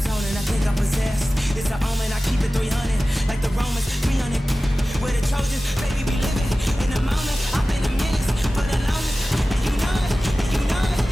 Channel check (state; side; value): normal; both; correlation 0.96